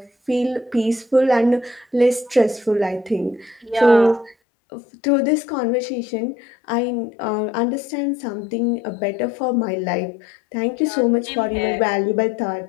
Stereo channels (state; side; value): drops out; right; at 4.4 s